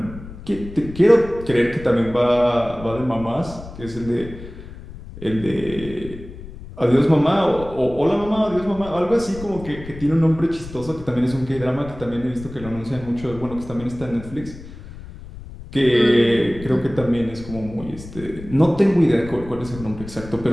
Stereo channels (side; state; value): left; noise; rumble, 15 dB below the sound